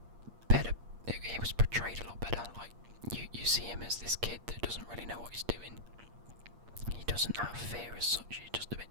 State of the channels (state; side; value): late; left; 8.5 ms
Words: better. He was portrayed a lot better. Like you see him as this kid that doesn't really know what he's doing. He doesn't have fear as such. He's just a bit